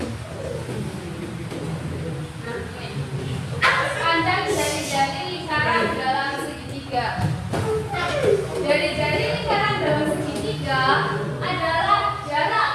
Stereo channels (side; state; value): both; identical; correlation 1.00